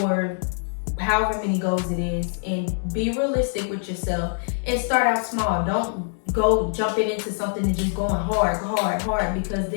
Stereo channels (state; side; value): silent; right; digital silence